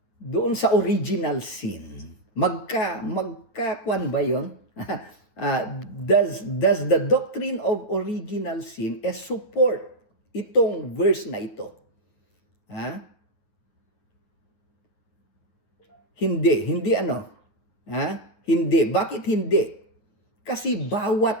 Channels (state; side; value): late; right; 9.3 ms